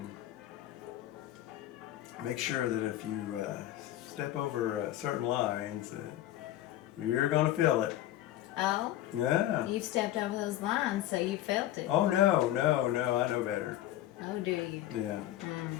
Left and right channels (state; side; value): quieter; right; 13.6 dB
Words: make sure that if you step over certain lines, you're going to feel it. Oh? Yeah. You've stepped over those lines, so you felt it. Oh, no, I know better. Oh, do you? Yeah.